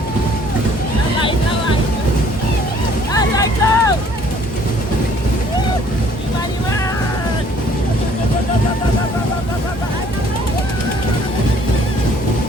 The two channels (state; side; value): normal; both; correlation 0.59